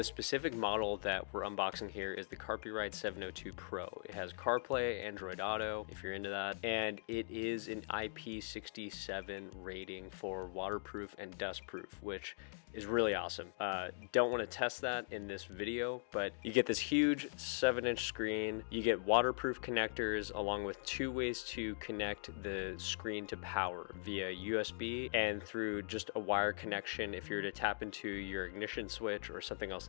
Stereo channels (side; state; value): right; silent; digital silence